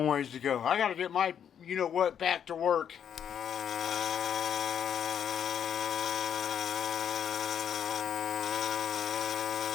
ways to go. I got to get my you-know-what back to work.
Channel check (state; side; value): quieter; right; 8.6 dB